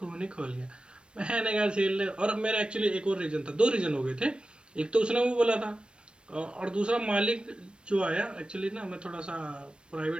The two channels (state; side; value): late; left; 0.056 ms